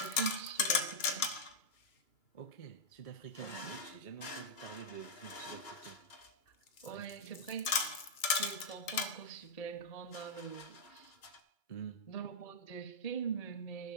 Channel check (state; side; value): late; right; 2.3 ms